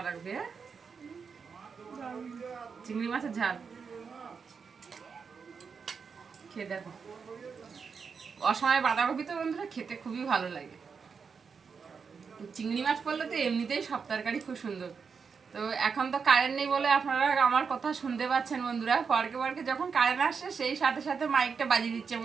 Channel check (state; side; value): quieter; left; 5.7 dB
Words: হ্যাঁ, চিংড়ি মাছের ঝাল খেয়ে দেখো। অসময় বাঁধাকপি তো বন্ধুরা খেতে খুবই ভালো লাগে। চিংড়ি মাছ পড়লে তো এমনিতেই সব তরকারি খুব সুন্দর। তো এখন তো কারেন্ট নেই বলে আপনারা আমার কথা শুনতে পাচ্ছেন বন্ধুরা। পরকে পরকে যখন কারেন্ট আসছে সেই সাথে সাথে মাইকটা বাজিয়ে দিচ্ছে।